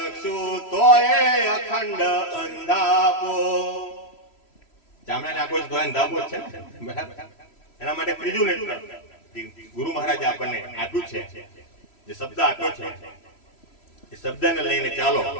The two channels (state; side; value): late; right; 3.0 ms